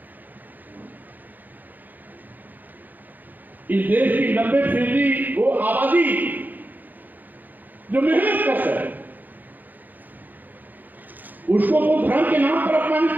इस देश की 90% वो आबादी जो मेहनत कश है, उसको वो धर्म के नाम पर अपमानित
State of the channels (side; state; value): left; late; 0.085 ms